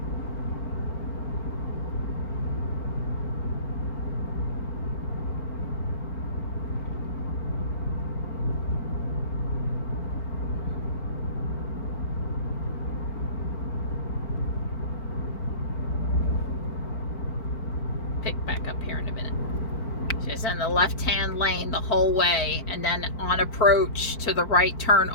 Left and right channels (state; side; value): late; right; 4.5 ms